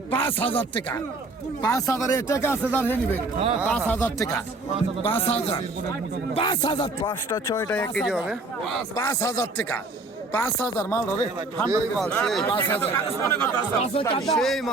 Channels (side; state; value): left; quieter; 3.3 dB